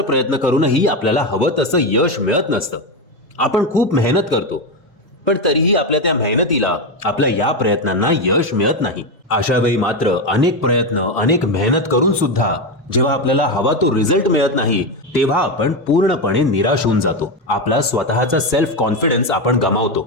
प्रयत्न करूनही आपल्याला हवं तसं यश मिळत नसतं. आपण खूप मेहनत करतो पण तरीही आपल्या त्या मेहनतीला, आपल्या या प्रयत्नांना यश मिळत नाही. अशा वेळी मात्र अनेक प्रयत्न, अनेक मेहनत करून सुद्धा जेव्हा आपल्याला हवा तो रिझल्ट मिळत नाही, तेव्हा आपण पूर्णपणे निराश होऊन जातो. आपला स्वतःचा सेल्फ कॉन्फिडन्स आपण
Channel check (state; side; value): normal; both; correlation 0.12